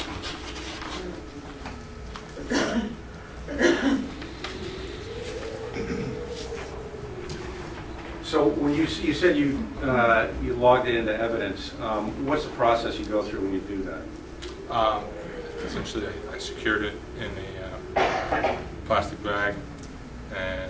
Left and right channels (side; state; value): both; identical; correlation 1.00